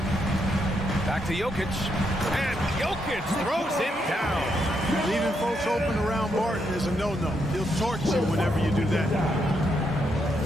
Back to Jokic. And Jokic throws it down. Leaving folks open around Barton is a no-no. He'll torch you whenever you do that.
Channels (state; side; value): normal; both; correlation 0.79